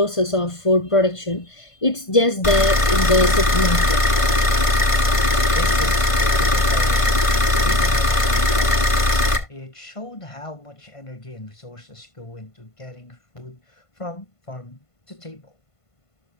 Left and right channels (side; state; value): right; late; 1.5 ms